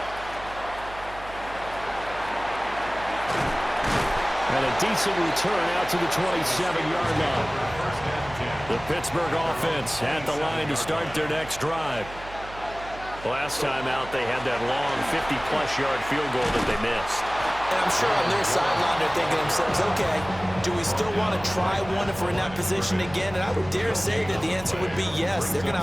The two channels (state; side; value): noise; right; hum, 15 dB below the sound